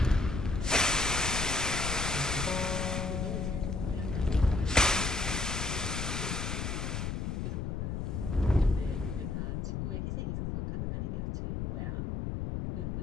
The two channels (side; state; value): left; noise; rumble, 2 dB below the sound